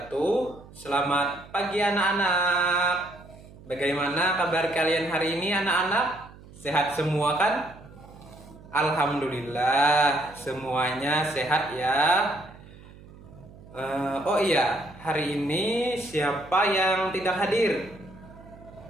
Selamat pagi anak-anak. Bagaimana kabar kalian hari ini anak-anak? Sehat semua kan? Alhamdulillah semuanya sehat ya. Oh iya, hari ini siapa yang tidak hadir?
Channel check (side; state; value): right; noise; hum, 20 dB below the sound